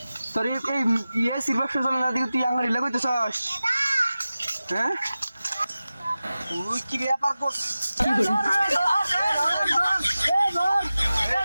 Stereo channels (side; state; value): both; inverted; correlation -0.95